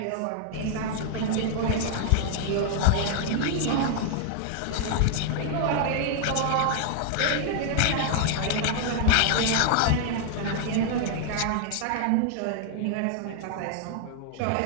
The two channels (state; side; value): different; both; correlation 0.00